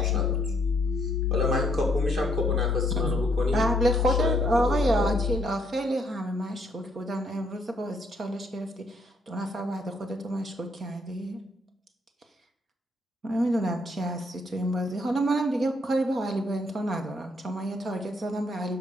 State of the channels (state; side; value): normal; both; correlation 0.70